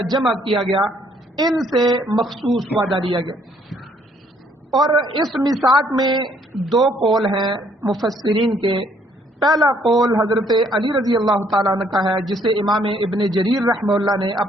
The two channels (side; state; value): both; normal; correlation 0.65